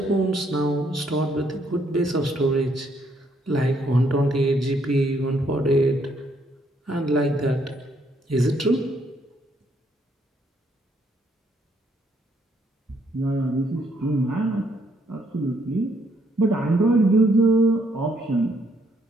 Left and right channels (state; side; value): normal; both; correlation 0.71